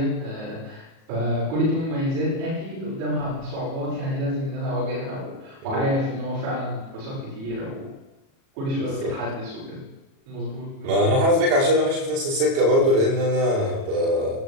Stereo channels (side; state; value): left; late; 37 ms